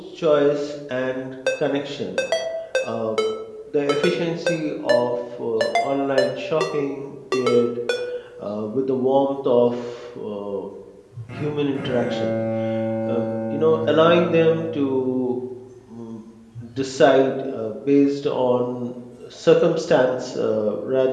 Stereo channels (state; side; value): identical; both; correlation 1.00